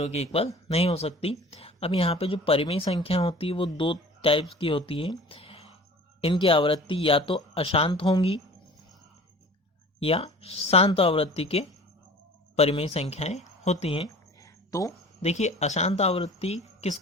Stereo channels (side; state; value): both; normal; correlation 0.43